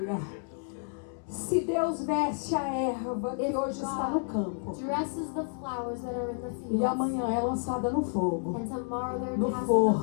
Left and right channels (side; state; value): right; silent; 58 dB below the other